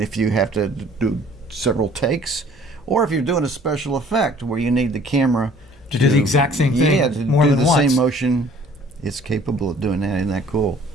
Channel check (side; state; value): both; normal; correlation 0.54